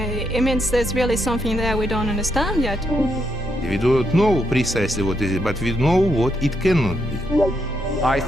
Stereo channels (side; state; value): both; normal; correlation 0.79